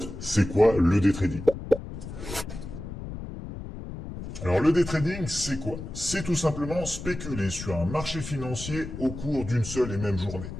c'est quoi le day trading? Alors le day trading, c'est quoi? C'est tout simplement spéculer sur un marché financier au cours d'une seule et même journée.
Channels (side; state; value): left; noise; rumble, 9 dB below the sound